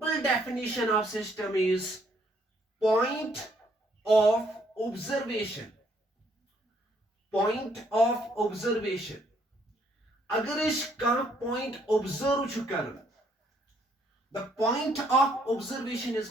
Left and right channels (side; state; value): both; normal; correlation 0.68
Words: definition of system is point of observation. Point of observation. अगर इसका पॉइंट ऑब्जर्व चुकर, the point of observation is